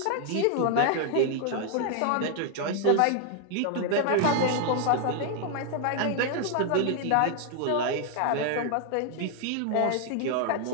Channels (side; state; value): both; different; correlation 0.00